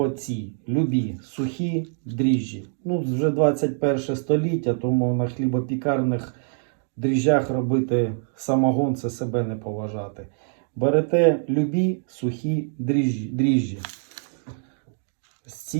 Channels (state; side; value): silent; left; 61 dB below the other